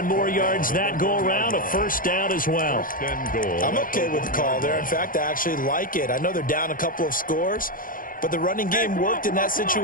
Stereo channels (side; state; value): right; late; 0.40 ms